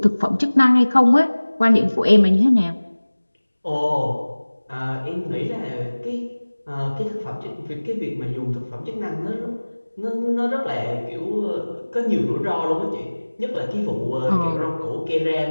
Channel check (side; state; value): both; inverted; correlation -1.00